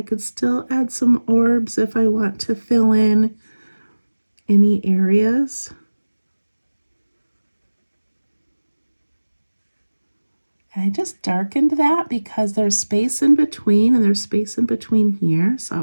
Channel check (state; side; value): inverted; both; correlation -1.00